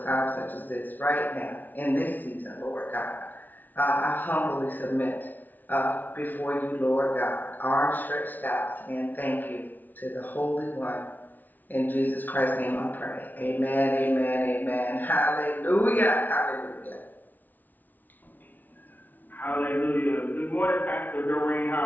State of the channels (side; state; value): right; late; 0.083 ms